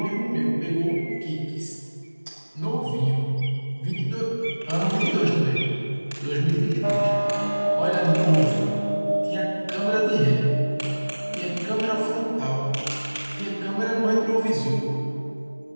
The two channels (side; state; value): both; inverted; correlation -1.00